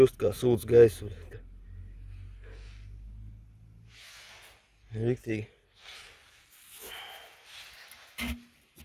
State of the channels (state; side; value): identical; both; correlation 1.00